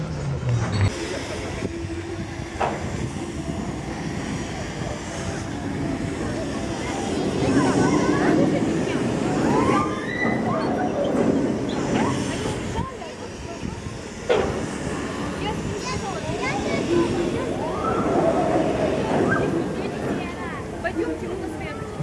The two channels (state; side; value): identical; both; correlation 1.00